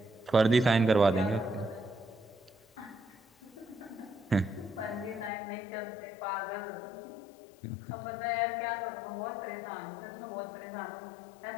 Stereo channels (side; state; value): right; drops out; at 5.3 s